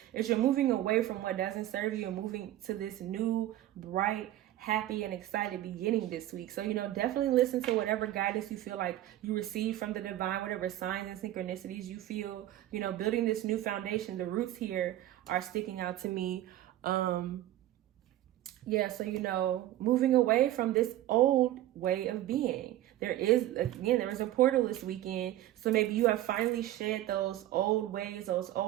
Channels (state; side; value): quieter; left; 14.1 dB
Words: is you're moving away from what doesn't serve you and moving to this new, bright, happy and excited beginning this week. So, you know, definitely listen to whatever guidance you feel like you receive from the divine, whatever signs and synchronicities you feel, you know, building this new foundation. The roots here are sticking out to me. Yeah, so, you know, moving away from this old way of being. There is a portal this weekend. So maybe you have finally shed those old ways, those